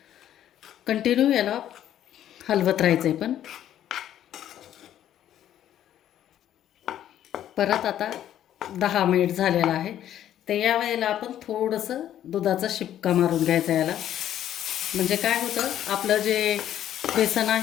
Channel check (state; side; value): quieter; right; 11.3 dB